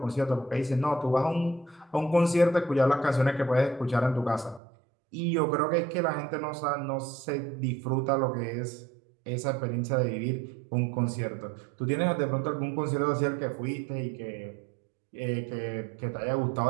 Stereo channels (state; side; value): drops out; left; at 4.6 s